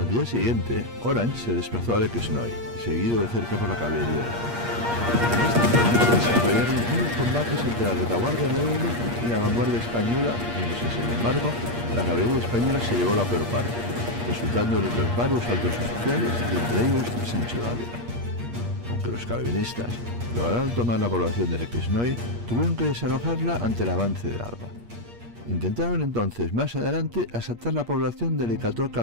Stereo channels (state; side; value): late; left; 8.5 ms